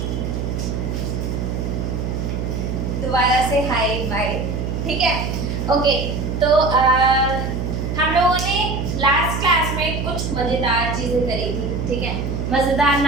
दोबारा से hi bye, ठीक है। ओके, तो हम लोगों ने लास्ट क्लास में कुछ मज़ेदार चीज़ें करी थी, ठीक है। मज़ेदार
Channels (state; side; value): noise; right; hum, 2 dB below the sound